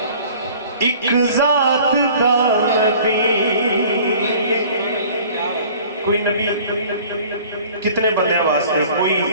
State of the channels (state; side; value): inverted; both; correlation -0.49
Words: ایک ذات دا نبی. کوئی نبی کتنے بندے واسطے، کوئی